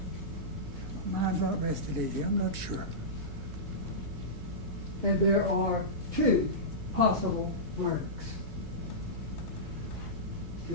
My mind's not rested easy, I'm not sure. And there are two possible verdicts.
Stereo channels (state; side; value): normal; both; correlation -0.16